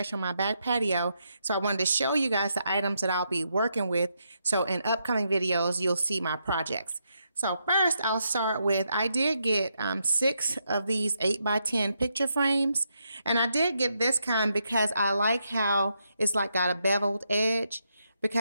on my back patio. So I wanted to show you guys the items that I'll be working with. So in upcoming videos, you'll see my projects. So first I'll start with, I did get 6 of these 8x10 picture frames. And I did get this kind because I like how it's like got a beveled edge,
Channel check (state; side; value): inverted; both; correlation -0.80